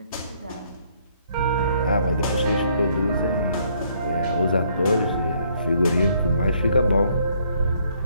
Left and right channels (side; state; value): both; inverted; correlation -0.67